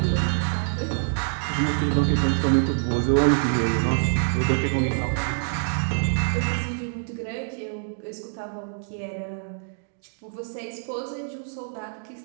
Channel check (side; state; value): left; silent; digital silence